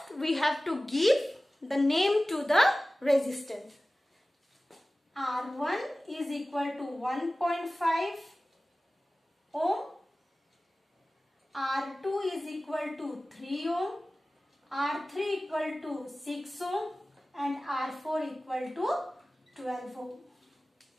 we have to give the name to the resistance. R1 is equal to 1.5 ohm. R2 is equal to 3 ohm. R3 equal to 6 ohm. And R4 equal to 12 ohm.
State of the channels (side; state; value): both; normal; correlation 0.97